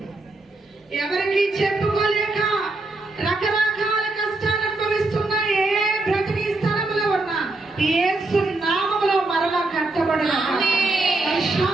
ఎవరికి చెప్పుకోలేక రకరకాల కష్టాలు అనుభవిస్తున్న ఏ బ్రతికి స్థలంలో ఉన్నా యేసు నామములో మరలా కట్టబడును.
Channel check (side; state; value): left; quieter; 3.0 dB